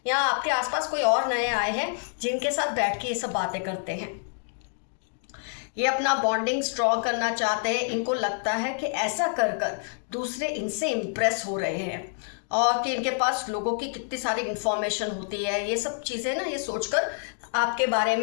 या आपके आसपास कोई और नए आए हैं जिनके साथ बैठ के ये सब बातें करते हैं। ये अपना बॉन्डिंग स्ट्रॉन्ग करना चाहते हैं। इनको लगता है कि ऐसा कर कर दूसरे इनसे इम्प्रेस हो रहे हैं, और कि इनके पास लोगों की कितनी सारी इंफॉर्मेशन होती है। ये सब चीज़ें ना, ये सोचकर आपके बारे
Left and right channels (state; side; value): silent; right; digital silence